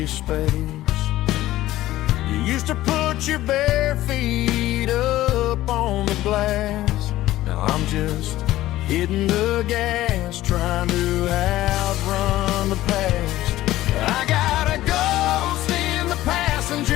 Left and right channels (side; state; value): right; quieter; 15.5 dB